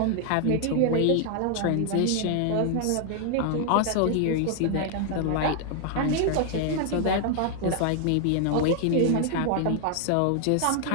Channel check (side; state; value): both; different; correlation 0.00